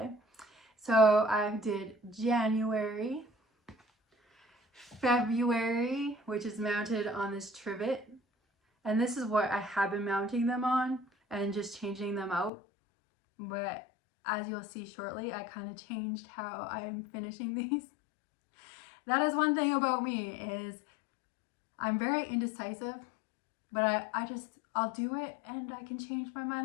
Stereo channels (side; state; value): right; drops out; at 12.5 s